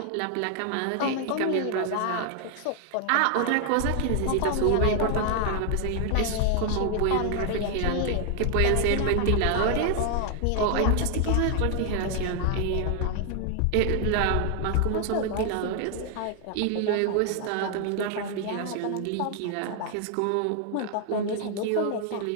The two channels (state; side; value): different; both; correlation 0.00